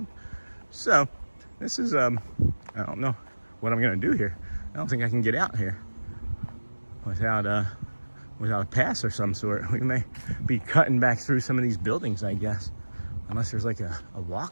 So, this is, I don't know what I'm going to do here. I don't think I can get out here without a pass or some sort. We may be cutting back through some of these buildings, I guess. Unless there's like a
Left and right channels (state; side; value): inverted; both; correlation -1.00